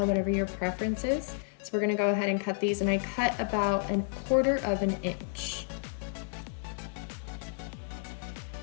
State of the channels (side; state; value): right; silent; 57 dB below the other